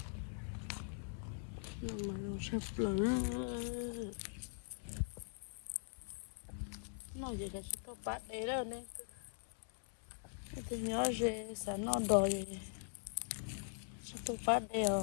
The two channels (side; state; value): right; silent; 50 dB below the other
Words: nó mà nó sắp lỡ nó gì cả chỉ có bát đấy đâu nên tôi nhớ gì sao nó đòi chỉ có bát đấy